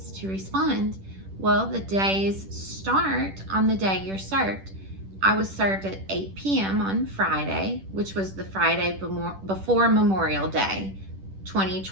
to respond. Well, the days start on the day you're served. I was served at 8 p.m. on Friday, which was the Friday before Memorial Day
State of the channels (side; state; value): left; late; 10 ms